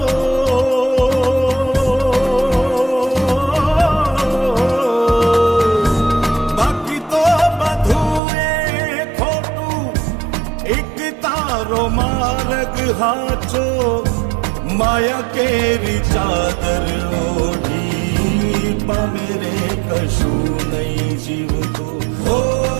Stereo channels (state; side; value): drops out; left; at 8.2 s